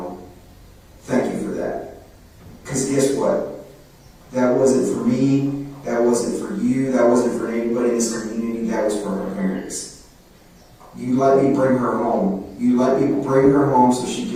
Thank you for that. Because guess what? That wasn't for me. That wasn't for you. That wasn't for anybody in this community. That was for her parents. You let me bring her home. You let me bring her home so she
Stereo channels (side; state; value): both; identical; correlation 1.00